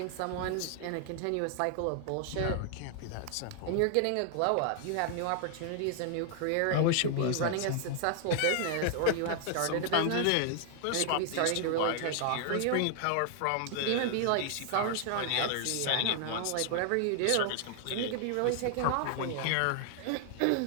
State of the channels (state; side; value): different; both; correlation 0.00